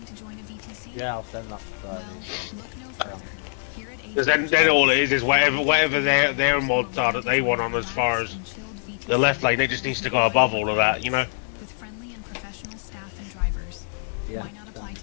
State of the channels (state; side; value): silent; right; digital silence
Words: to join a VTC? Yeah, I'll send that to Friday. Because then all it is whatever their mods are that they want on as far as the left lane. It just needs to go above all of that, you know. With friendly and professional staff and drivers. Yeah. Why not apply